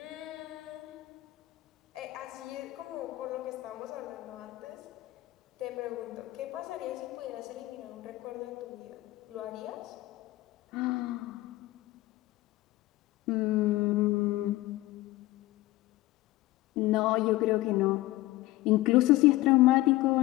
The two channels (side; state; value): right; quieter; 18.1 dB